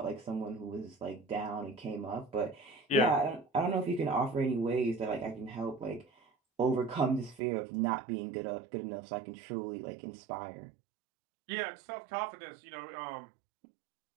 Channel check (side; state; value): left; drops out; at 7.4 s